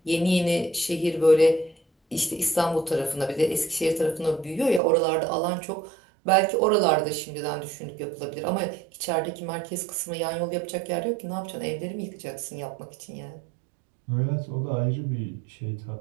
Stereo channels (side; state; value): left; drops out; at 4.8 s